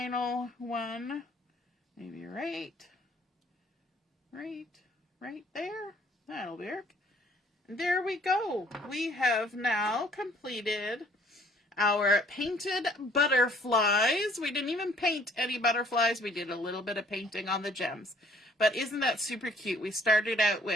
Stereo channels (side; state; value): both; normal; correlation 0.59